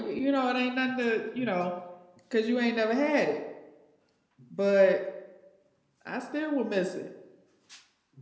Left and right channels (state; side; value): identical; both; correlation 1.00